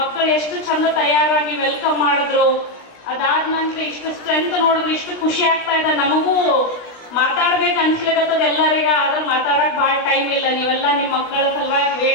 ಎಷ್ಟು ಚಂದ ತಯಾರಾಗಿ welcome ಮಾಡಿದ್ರು, ಅದಾದ ನಂತರ ಇಷ್ಟು ಸ್ಟ್ರೆಂತ್ ನೋಡಿದ್ರೆ ಇಷ್ಟು ಖುಷಿ ಆಗ್ತಾ ಇದೆ. ನಮಗೂ ಮಾತಾಡ್ಬೇಕು ಅನ್ಸ್ಲಿಕ್ಕತ್ತದ ಎಲ್ಲರಿಗ, ಆದ್ರೆ ಮಾತಾಡಕ್ ಭಾಳ ಟೈಮ್ ಇಲ್ಲ. ನೀವೆಲ್ಲ ನಿಮ್ಮ ಮಕ್ಕಳ ಸಲುವಾಗಿ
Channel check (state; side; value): late; right; 16 ms